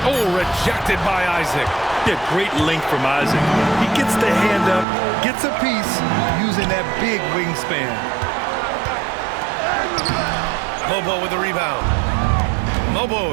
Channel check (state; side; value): drops out; left; at 4.9 s